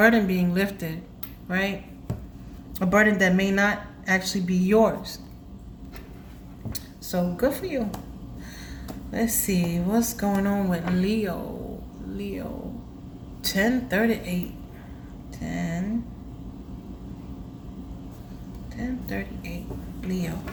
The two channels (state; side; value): identical; both; correlation 1.00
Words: being lifted, right? A burden that may not actually be yours. So good for you. Let's see what's going on with Leo. 10:38. 10:38. Leo.